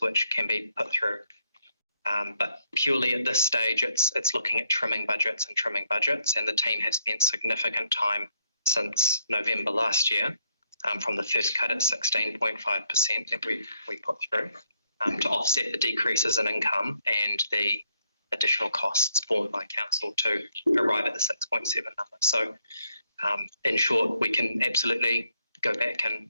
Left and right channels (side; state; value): both; inverted; correlation -0.74